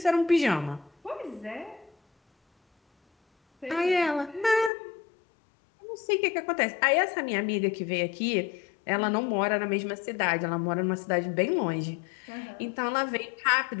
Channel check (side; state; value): right; drops out; at 4.7 s